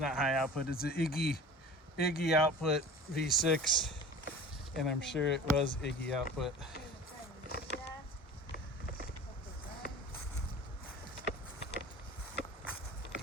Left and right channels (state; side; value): normal; both; correlation 0.39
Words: high output, it's an Iggy output V6, and I'm sure it was Iggy output.